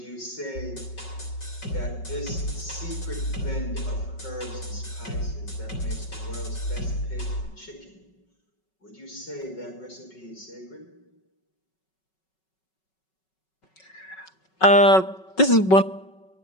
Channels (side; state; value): right; late; 5.3 ms